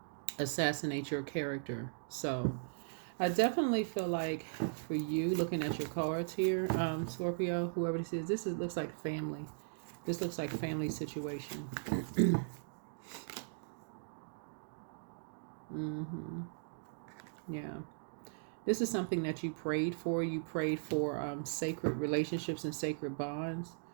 assassinate your character. So I definitely feel like for you, looking at your cards here, Scorpio, whoever this is, looks like family. This looks like family situation. Yeah. This is something that you prayed for. You prayed for sacred relationships and sacred bonds.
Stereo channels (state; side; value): silent; left; digital silence